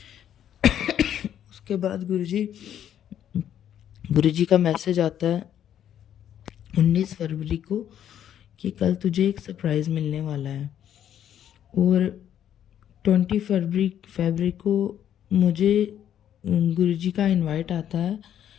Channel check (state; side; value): quieter; right; 10.2 dB